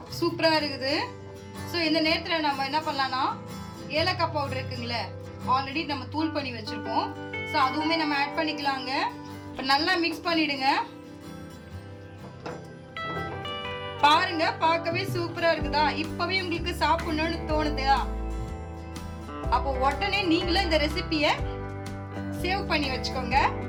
சூப்பராக இருக்குது. ஸோ இந்த நேரத்தில் நம்ம என்ன பண்ணலான்னா ஏலக்காய் பவுடர் இருக்குங்களே, ஆல்ரெடி நம்ம தூள் பண்ணி வச்சுருக்கோம். ஸோ அதுவுமே நம்ம ஆட் பண்ணிக்கலாங்க. இப்போ நல்லா மிக்ஸ் பண்ணிவிடுங்க. பாருங்க, பார்க்கவே சூப்பரா இருக்குதா? இப்பவே உங்களுக்கு சாப்பிடணும்னு தோணுதா? அப்போ உடனே நீங்களும் இந்த ரெசிபியை சேவ் பண்ணி வச்சுக்கோங்க.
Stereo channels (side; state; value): both; identical; correlation 1.00